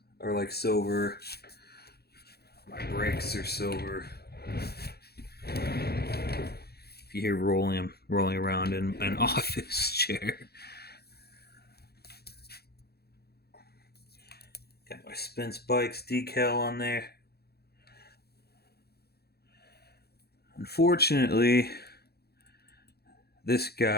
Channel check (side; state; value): right; late; 0.46 ms